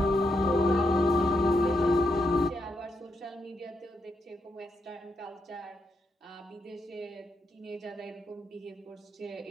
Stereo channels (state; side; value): normal; both; correlation 0.81